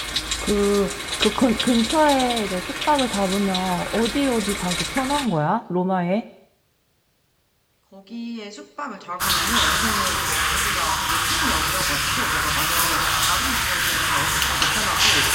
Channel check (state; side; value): identical; both; correlation 1.00